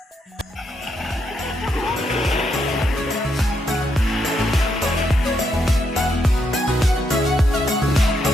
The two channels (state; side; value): normal; both; correlation 0.79